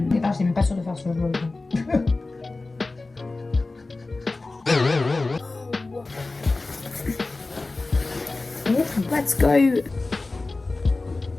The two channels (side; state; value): right; quieter; 3.3 dB